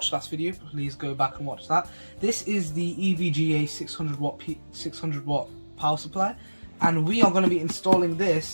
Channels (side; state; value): both; inverted; correlation -1.00